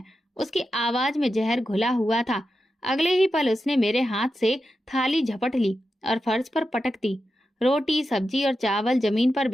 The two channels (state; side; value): normal; both; correlation 0.90